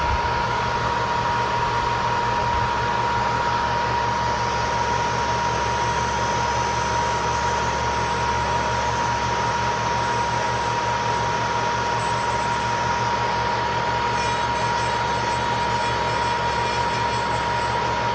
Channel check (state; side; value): identical; both; correlation 1.00